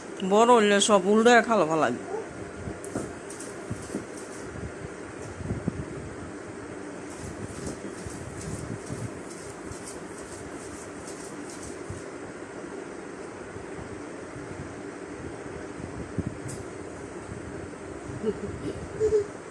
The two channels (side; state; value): both; identical; correlation 1.00